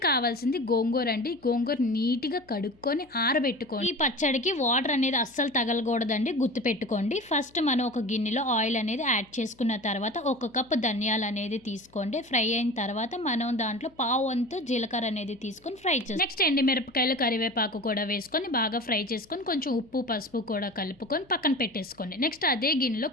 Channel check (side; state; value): left; noise; hum, 30 dB below the sound